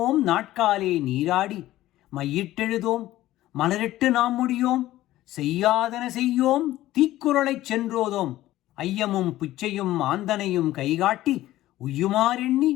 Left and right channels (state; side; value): quieter; right; 15.2 dB